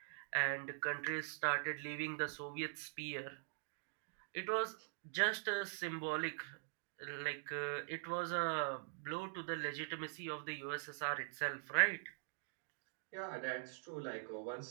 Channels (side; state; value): left; silent; digital silence